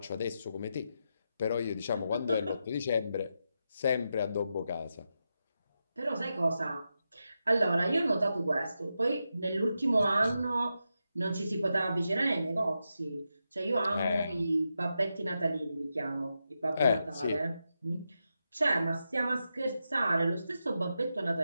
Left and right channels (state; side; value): inverted; both; correlation -0.87